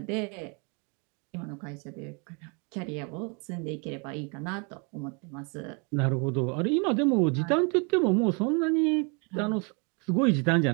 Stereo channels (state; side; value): quieter; left; 34.4 dB